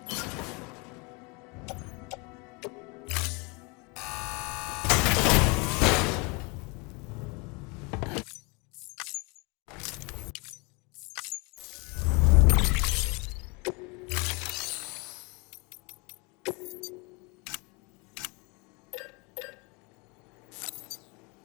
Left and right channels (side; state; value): right; quieter; 29.5 dB